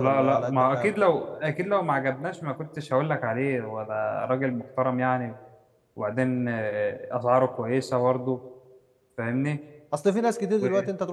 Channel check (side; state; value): both; identical; correlation 1.00